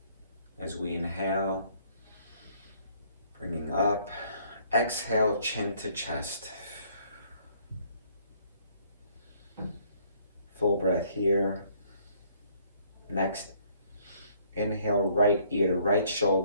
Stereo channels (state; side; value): inverted; both; correlation -0.63